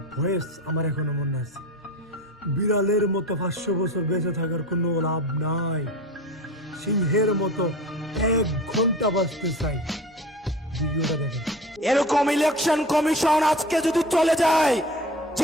ভয়েস আমার এখনো মনে আছে। বিড়ালের মতো 500 বছর বেঁচে থাকার কোনো লাভ নাই, সিংহের মতো 1 ঘন্টা বাঁচতে চাই। ভিডিওটা দেখেন। এরকম ইলেকশন কমিশন আজকে যদি চলে যায়,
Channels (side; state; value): both; normal; correlation 0.35